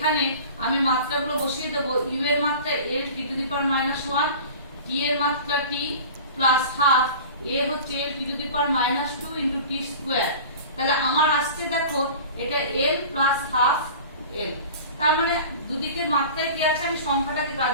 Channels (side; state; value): both; inverted; correlation -0.38